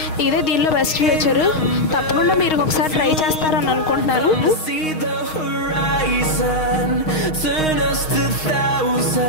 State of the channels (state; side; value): late; right; 6.4 ms